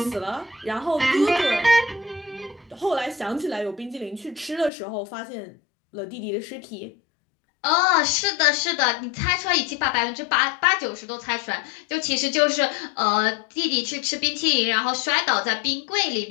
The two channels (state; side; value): drops out; right; at 4.7 s